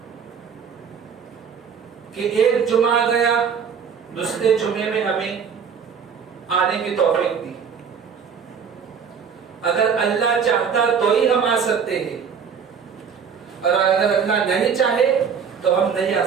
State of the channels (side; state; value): left; quieter; 6.7 dB